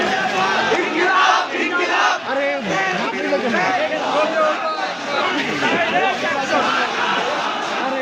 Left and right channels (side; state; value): both; identical; correlation 1.00